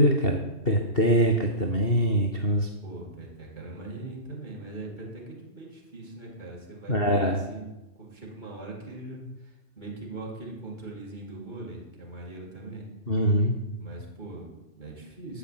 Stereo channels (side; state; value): right; late; 2.7 ms